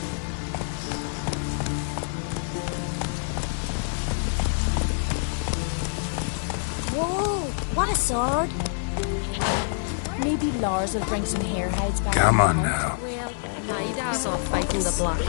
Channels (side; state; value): right; silent; digital silence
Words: Come on now. Well, my dad's off fighting the black